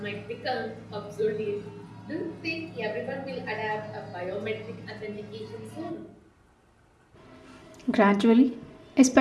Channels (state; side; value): identical; both; correlation 1.00